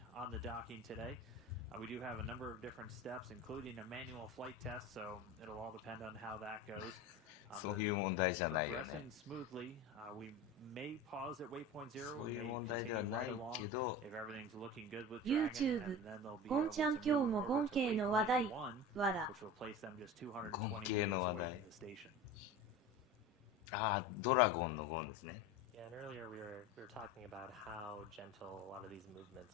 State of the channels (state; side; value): normal; both; correlation 0.31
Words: on the docking today. We do have a number of different steps, including a manual flight test, so it'll all depend on how that goes. そういう問題じゃないよね。 Smoothly, we may pause at waypoint 0. そういう問題ではないけど、 If everything's looking good with YouTube Dragon, and then they'll be ゴンちゃん able to 今日も move ゴン over to 系の waypoint 話題 1, わら。 which will place them just 220ゴン系の話題。 meters away from the station. ああ、ドラゴンのゴンですね。 Yeah, and earlier we were talking about how gentle a lot of these